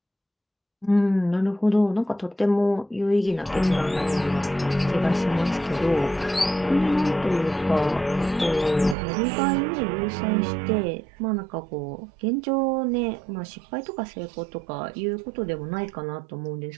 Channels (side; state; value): left; drops out; at 9.0 s